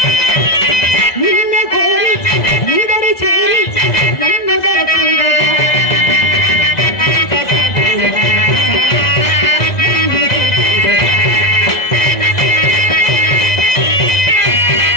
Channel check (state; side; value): late; right; 2.0 ms